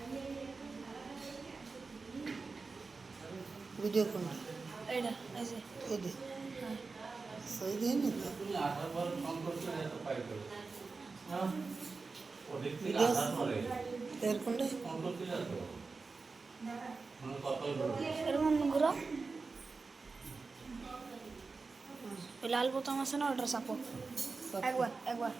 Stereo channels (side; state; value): left; quieter; 4.2 dB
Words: ভিডিও কোনটা এটা এই যে এই দে হ্যাঁ সই দিয়ে নি তো তুমি আসার পর ফোন করছো এত পাই করে হ্যাঁ ওদের থেকে ভিডিও আসার পরে এর কোনটা ফোন করতে যাচ্ছ মানে কতই বলবো এরকম ঘুরো ওই লাল বোতাম আছে না ওটা চাপো একবার একবার